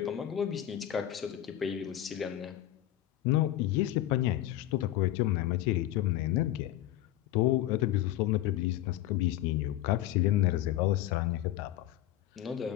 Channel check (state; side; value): quieter; right; 13.4 dB